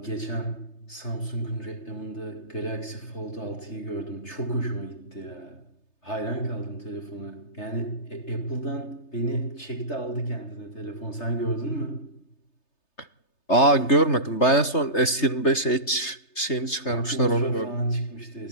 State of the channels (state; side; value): late; right; 3.3 ms